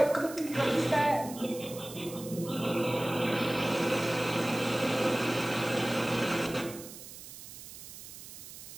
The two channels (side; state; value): right; noise; hiss, 14 dB below the sound